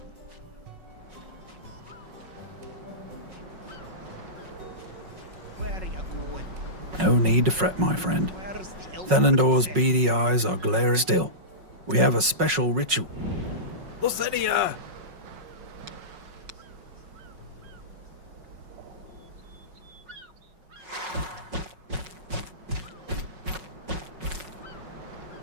Where are you going? No need to fret, my friend. Where's the elf Thelendor's princess? beady eyes are glaring still. We have a special ritual. Lasenia!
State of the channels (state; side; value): late; left; 5.4 ms